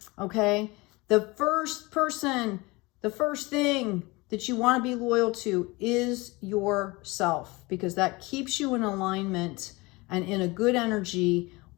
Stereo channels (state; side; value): quieter; right; 23.7 dB